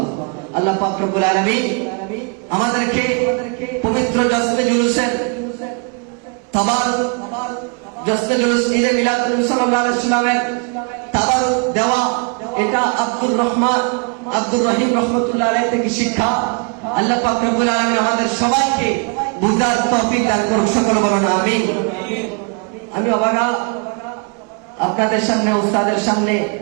আল্লাহ পাক রব্বুল আলামিন আমাদেরকে পবিত্র জশ্নে জুলুসের তাবারুক, জশ্নে জুলুস ঈদে মিলাদুন নবী সাল্লাল্লাহু আলাইহি ওয়াসাল্লামের তাবারুক দেওয়া, এটা আব্দুর রহিম রহমাতুল্লাহ আলাইহি থেকে শিক্ষা। আল্লাহ পাক রব্বুল আলামিন আমাদের সবাইকে বুঝার তৌফিক দান করুন। সকলে বলুন আমিন। আমি অবাগা আপনাদের সামনে, উস্তাদের সামনে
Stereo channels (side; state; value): left; quieter; 36.5 dB